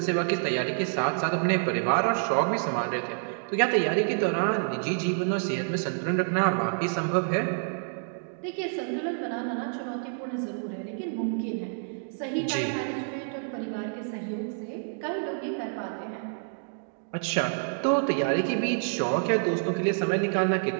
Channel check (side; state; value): left; silent; digital silence